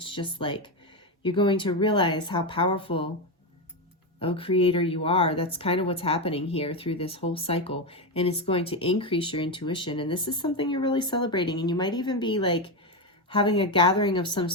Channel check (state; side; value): normal; both; correlation 0.10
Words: just like, you're going to realize how powerful a creator you are. That's kind of what's happening here through this whole cycle. And it's going to increase your intuition. And this is something you're really celebrating. And you might even be like having a gathering of some